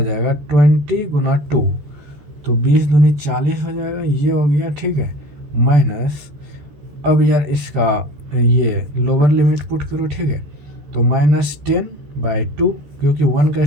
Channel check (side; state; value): left; late; 14 ms